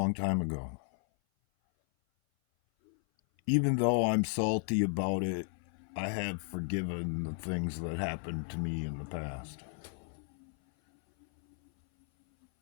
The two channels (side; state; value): right; silent; 55 dB below the other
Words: time ago. Even though I'm salty about it, I have forgiven the things that happened to me in the past.